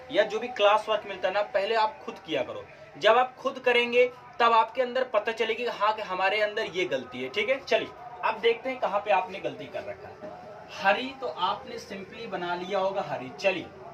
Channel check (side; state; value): both; identical; correlation 1.00